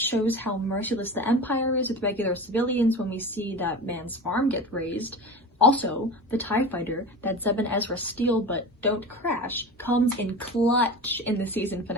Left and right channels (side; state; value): both; normal; correlation 0.30